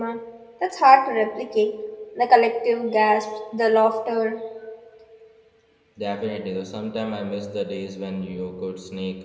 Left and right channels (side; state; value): both; identical; correlation 1.00